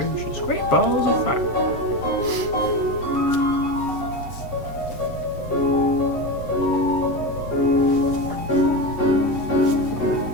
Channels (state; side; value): late; right; 8.0 ms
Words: great balls of fire.